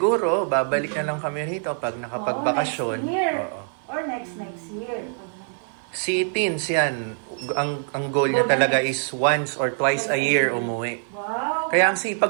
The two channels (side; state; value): left; silent; 58 dB below the other